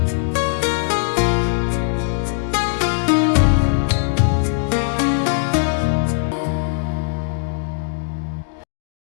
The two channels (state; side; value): silent; right; digital silence